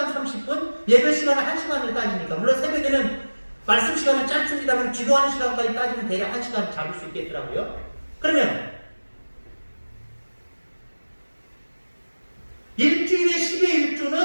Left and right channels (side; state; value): both; inverted; correlation -1.00